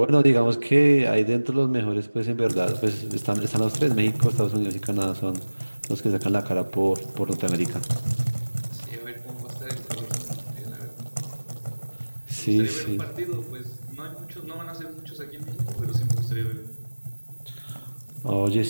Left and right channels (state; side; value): inverted; both; correlation -1.00